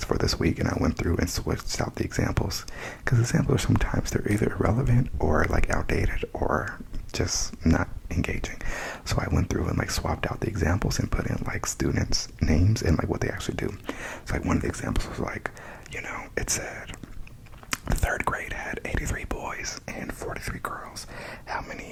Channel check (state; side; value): identical; both; correlation 1.00